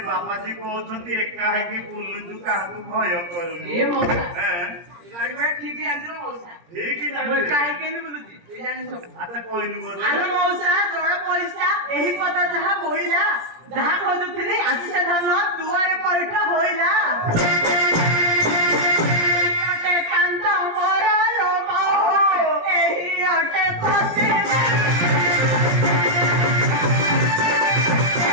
बाबा जी कहउछंती एका है कि बुल्लु काहू भय करू ए मौसा हैं गाड़ी में ठीक है अंदर मौसा ठीक ही वो काहे के नहीं बोलुची ए जानि सब अच्छा कोई नहीं बोल अरे मौसा जोड़ा पैसा एही पता जहा बोइला जहा खोजुथिली आसी से धन दुआरे पैठा होइला अटे कांता मोर रो बाबू एही अटे पसे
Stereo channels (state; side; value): late; left; 17 ms